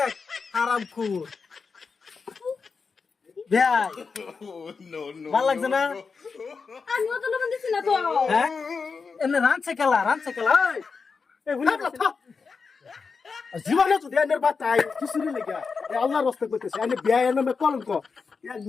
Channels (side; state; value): right; quieter; 5.1 dB